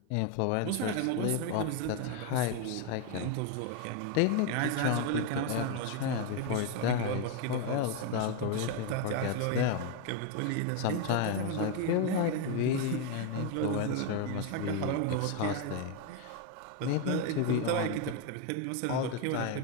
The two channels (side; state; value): both; different; correlation 0.01